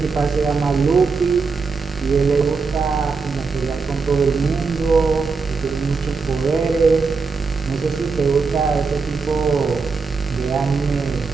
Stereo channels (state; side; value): quieter; left; 4.7 dB